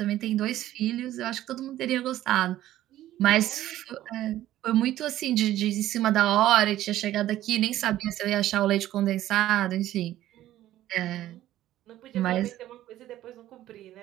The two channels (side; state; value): left; quieter; 13.7 dB